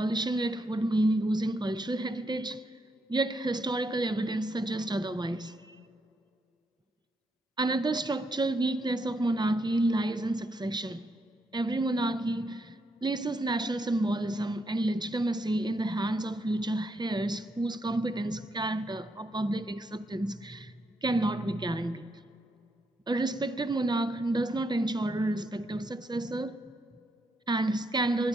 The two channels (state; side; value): normal; both; correlation 0.78